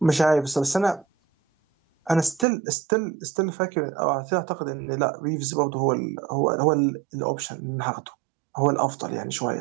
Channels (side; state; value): left; drops out; at 2.5 s